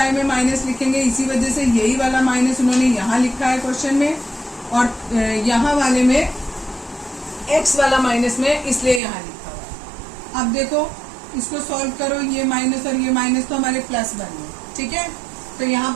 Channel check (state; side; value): drops out; left; at 9.0 s